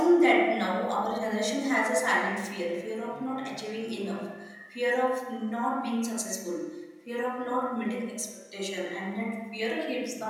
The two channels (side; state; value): both; identical; correlation 1.00